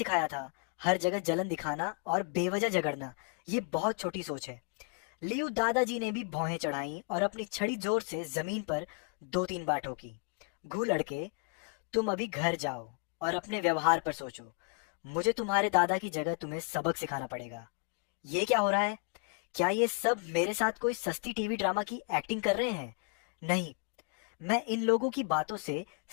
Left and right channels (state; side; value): quieter; right; 36.8 dB